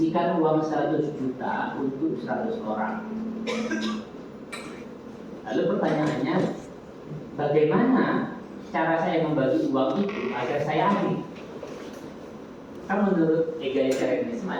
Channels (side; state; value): both; identical; correlation 1.00